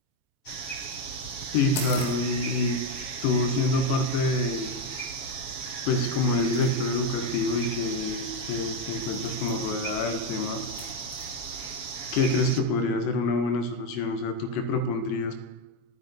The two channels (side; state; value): right; late; 7.2 ms